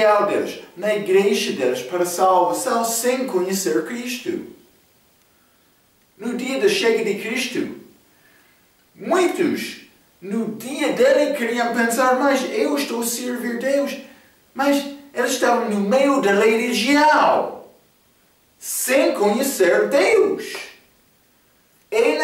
deles, na igreja deles para a salvação sem conhecer Cristo. No dia da chega de Cristo, muitos, no dia dele, queriam pensar, mas eu estou a servir Deus. Mas eles estavam no meio da religião, sem conhecer Deus. É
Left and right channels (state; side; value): identical; both; correlation 1.00